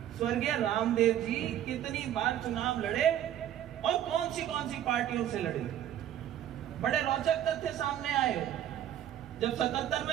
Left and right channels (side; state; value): left; quieter; 11.1 dB